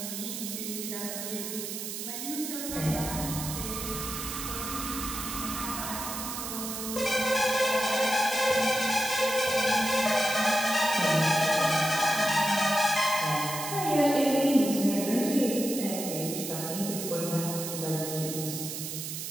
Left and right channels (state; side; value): noise; right; hiss, 6 dB below the sound